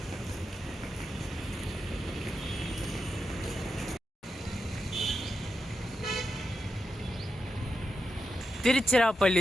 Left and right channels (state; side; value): normal; both; correlation 0.87